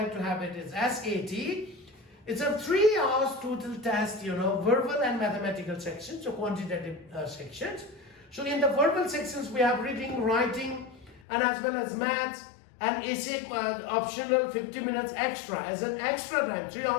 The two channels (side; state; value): right; drops out; at 11.2 s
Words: to have it is SAT. It's a 3 hours total test, verbal and mathematical sections, so quantitative sections. So in the verbal sections we have reading, writing, and as well as maths and essay optional 50 minutes extra as an extra time, 3